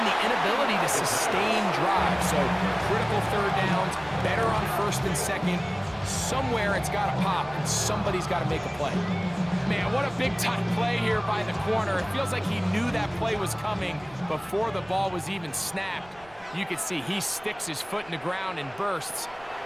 the inability to sustain drives. So critical 3rd downs, better on 1st and 2nd. Somewhere it's got to pop, and somebody's got to make a play. Man, what a big-time play here by the corner. It feels like he knew that play was coming before the ball was even snapped. You can see he sticks his foot in the ground and bursts.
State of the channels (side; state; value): right; noise; rumble, 25 dB below the sound